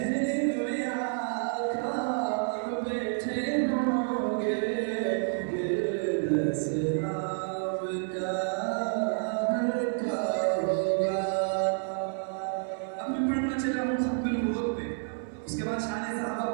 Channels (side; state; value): left; silent; 58 dB below the other